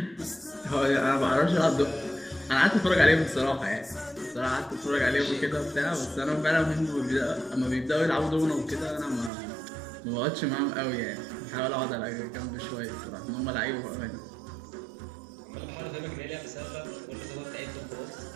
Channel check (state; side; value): drops out; left; at 9.3 s